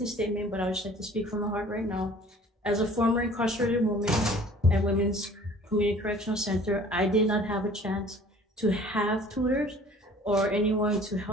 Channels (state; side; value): normal; both; correlation 0.50